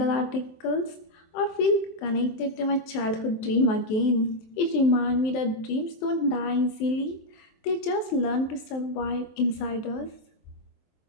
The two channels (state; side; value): late; right; 23 ms